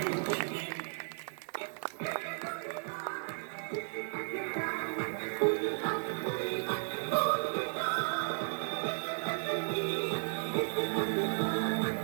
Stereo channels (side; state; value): left; silent; digital silence